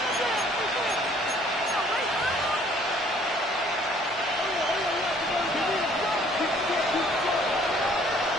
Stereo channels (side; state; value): both; normal; correlation 0.59